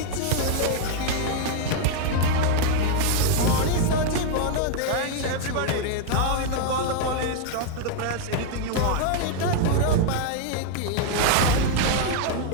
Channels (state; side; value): different; both; correlation 0.00